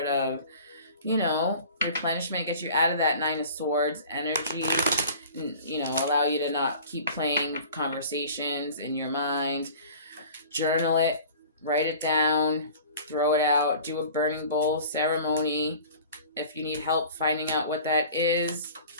of, replenishment, get you out of that Nine of Swords energy, and, allow you to not keep playing conversations in your mind. Journal it, write it down, throw it out, do a burning bowl ceremony. If you need help finding out what that is,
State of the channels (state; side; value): inverted; both; correlation -0.43